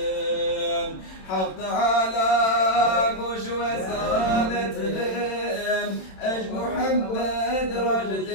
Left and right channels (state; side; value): late; right; 27 ms